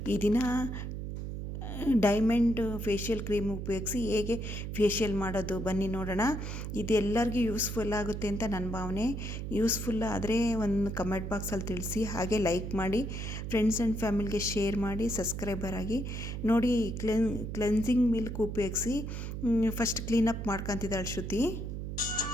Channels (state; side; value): noise; right; hum, 5 dB below the sound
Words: ಈ ದಿನ ಡೈಮಂಡ್ ಫೇಶಿಯಲ್ ಕ್ರೀಮ್ ಉಪಯೋಗಿಸಿ ಹೇಗೆ ಫೇಶಿಯಲ್ ಮಾಡೋದು ಬನ್ನಿ ನೋಡೋಣ. ಇದು ಎಲ್ಲರಿಗೂ ಯೂಸ್ಫುಲ್ ಆಗುತ್ತೆ ಅಂತ ನನ್ನ ಭಾವನೆ. ಯೂಸ್ಫುಲ್ ಆದರೆ ಒಂದು ಕಮೆಂಟ್ ಬಾಕ್ಸಲ್ಲಿ ತಿಳಿಸಿ, ಹಾಗೆ ಲೈಕ್ ಮಾಡಿ, ಫ್ರೆಂಡ್ಸ್ ಆ್ಯಂಡ್ ಫ್ಯಾಮಿಲಿಗೆ ಶೇರ್ ಮಾಡಿ, ಸಬ್ಸ್ಕ್ರೈಬರ್ ಆಗಿ ನೋಡಿ. ಕ್ಲೆನ್ಸಿಂಗ್ ಮಿಲ್ಕ್ ಉಪಯೋಗಿಸಿ ಫಸ್ಟ್ ಕ್ಲೀನಪ್ ಮಾಡ್ಕೊತಿದ್ದಾಳೆ ಶ್ರುತಿ.